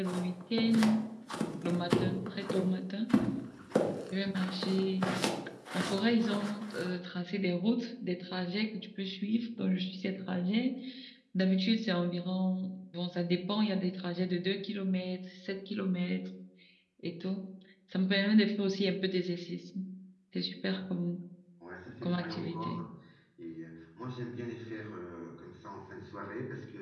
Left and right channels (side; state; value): both; identical; correlation 1.00